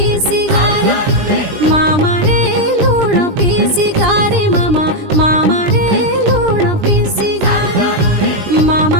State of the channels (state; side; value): late; left; 20 ms